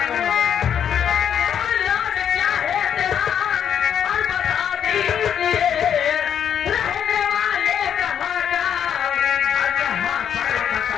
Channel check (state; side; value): quieter; right; 8.7 dB